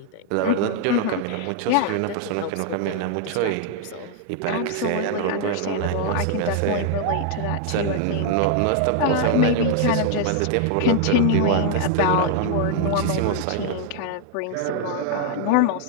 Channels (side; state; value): both; different; correlation 0.00